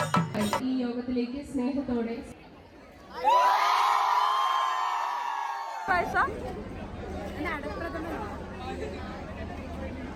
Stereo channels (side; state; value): both; identical; correlation 1.00